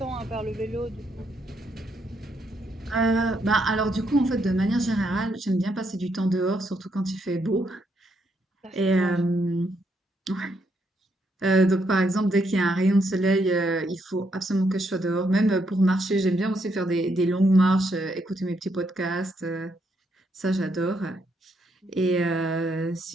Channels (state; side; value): normal; both; correlation 0.76